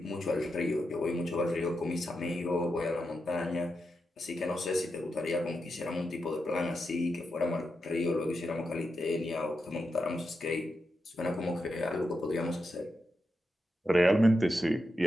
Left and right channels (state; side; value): normal; both; correlation 0.87